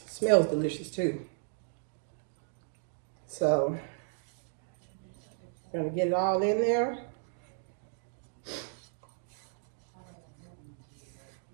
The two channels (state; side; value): silent; left; digital silence